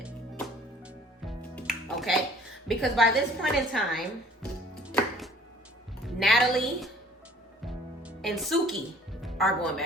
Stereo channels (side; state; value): both; normal; correlation 0.54